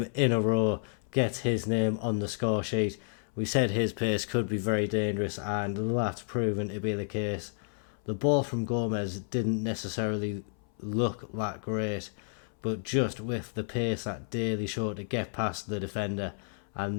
in a row gets his name on the score sheet. We said his pace could be very dangerous, and that's proven to be the case. The ball from Gomez didn't necessarily look that great, but just with the pace that Daly showed to get past the defender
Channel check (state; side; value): silent; right; 57 dB below the other